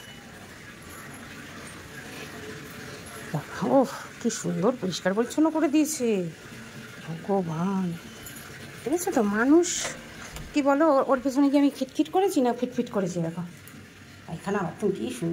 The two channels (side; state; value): both; identical; correlation 1.00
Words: দেখো, ও কি সুন্দর পরিষ্কার পরিচ্ছন্ন করে দিয়েছে ভগবান। দেখেছো তো? মানুষ কি বলো, ওর পেছনে কি আমি খিটখিট করেছি না ফিটফিট করেছি? দেখো এখানে আবার তুমি কি